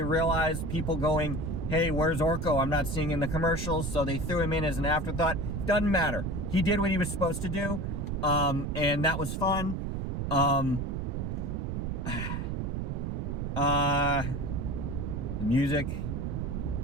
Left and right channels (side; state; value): right; noise; rumble, 2 dB below the sound